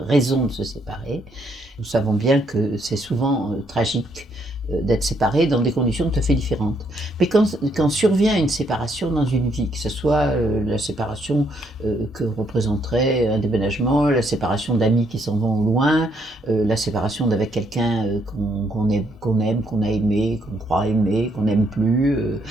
de se séparer. Nous savons bien que c'est souvent tragique d'être séparé dans des conditions tout à fait différentes. Mais quand survient une séparation dans une vie, que ce soit la séparation que représenterait un déménagement, la séparation d'amis qui s'en vont au loin, la séparation d'avec quelqu'un qu'on aime, qu'on a aimé, qu'on croit aimer, qu'on n'aime plus,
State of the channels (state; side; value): normal; both; correlation 0.72